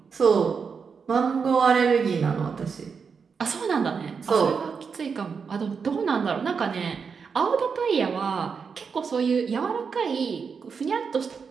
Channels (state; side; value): quieter; left; 5.8 dB